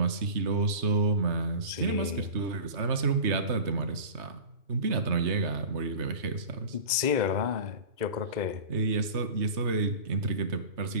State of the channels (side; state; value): left; late; 3.2 ms